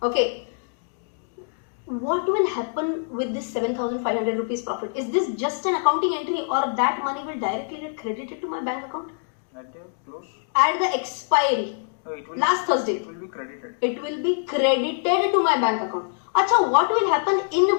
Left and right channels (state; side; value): silent; right; digital silence